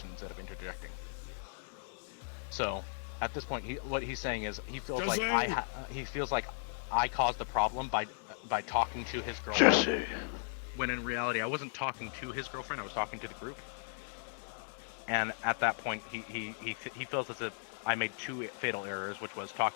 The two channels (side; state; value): right; silent; digital silence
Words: instead of interjecting. So at this point, what he's saying is he feels like I caused the problem by talking to his girlfriend. Jesse. When in reality, I wasn't talking to his girlfriend. I was talking to the group. And at that point, he feels as if I made two fatal errors, which was